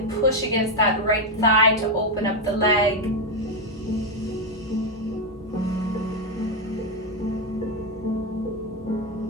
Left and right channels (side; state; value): both; normal; correlation 0.05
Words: push against that right thigh to open up the leg.